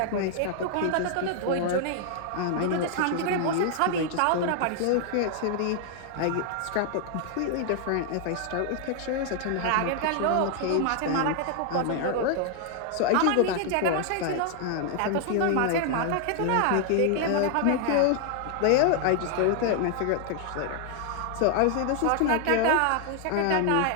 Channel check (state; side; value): different; both; correlation 0.00